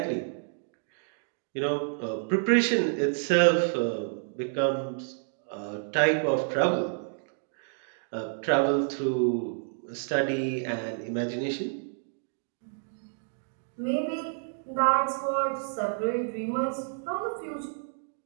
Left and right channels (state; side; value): silent; left; digital silence